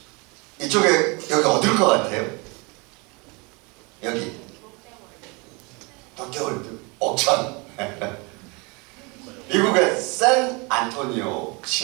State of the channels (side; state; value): left; quieter; 28.9 dB